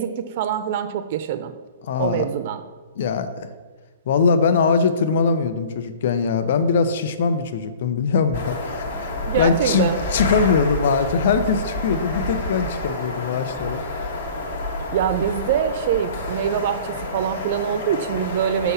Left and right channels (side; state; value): both; inverted; correlation -0.44